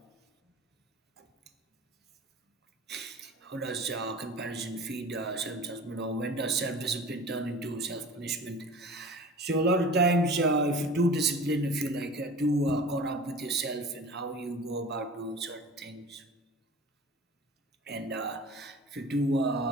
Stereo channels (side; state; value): both; normal; correlation 0.40